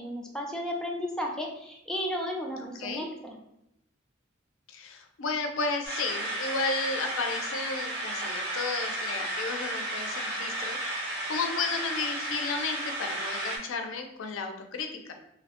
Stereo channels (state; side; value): normal; both; correlation 0.11